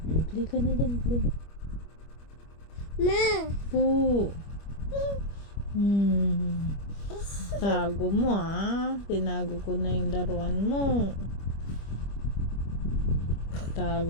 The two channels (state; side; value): late; right; 25 ms